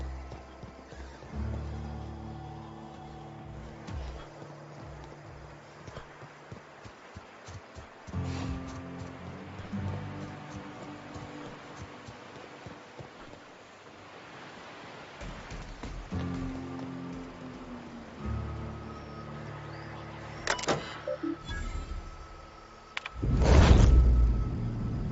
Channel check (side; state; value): both; identical; correlation 1.00